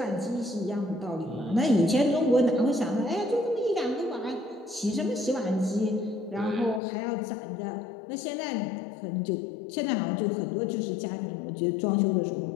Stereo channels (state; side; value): drops out; right; at 6.8 s